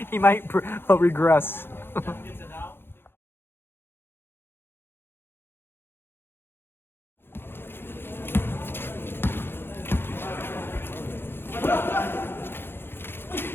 He might regress.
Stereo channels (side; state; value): right; late; 0.11 ms